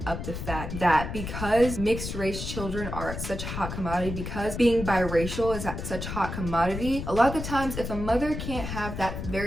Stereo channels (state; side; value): noise; left; rumble, 6 dB below the sound